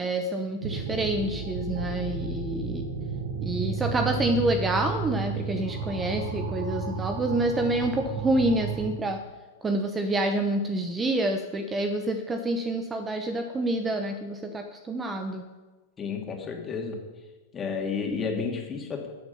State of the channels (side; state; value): both; normal; correlation 0.50